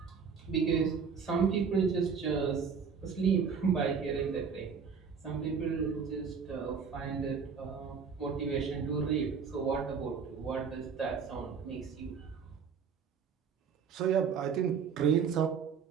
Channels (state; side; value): quieter; left; 6.2 dB